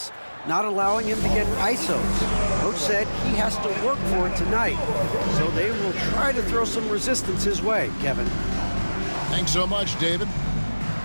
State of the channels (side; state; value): both; inverted; correlation -1.00